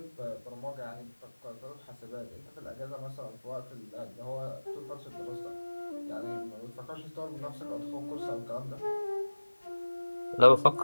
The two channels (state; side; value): inverted; both; correlation -1.00